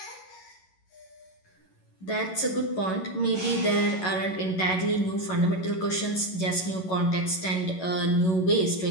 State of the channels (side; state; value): right; late; 11 ms